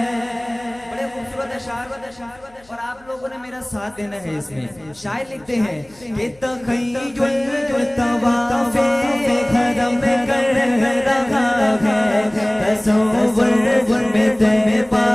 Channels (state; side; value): noise; left; hum, 29 dB below the sound